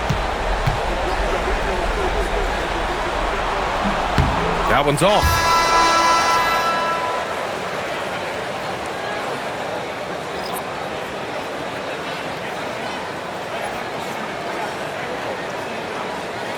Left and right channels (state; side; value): identical; both; correlation 1.00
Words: That one's off.